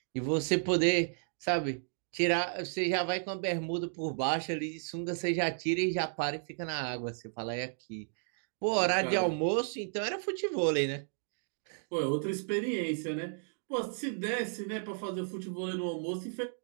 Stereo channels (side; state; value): left; silent; digital silence